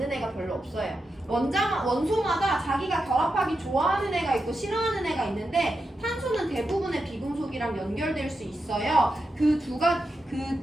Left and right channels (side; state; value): both; normal; correlation 0.87